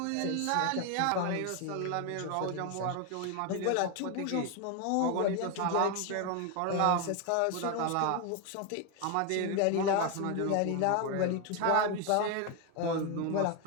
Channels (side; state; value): both; different; correlation 0.01